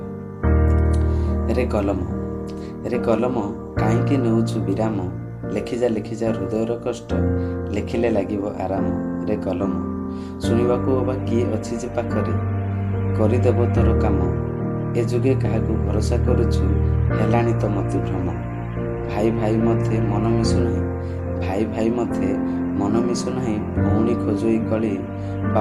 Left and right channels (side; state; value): both; identical; correlation 1.00